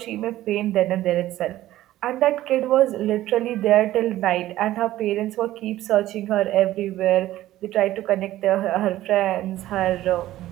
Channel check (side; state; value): left; quieter; 14.7 dB